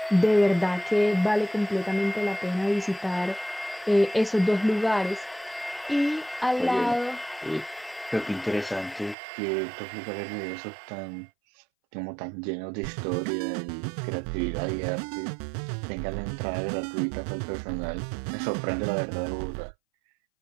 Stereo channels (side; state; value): left; drops out; at 9.2 s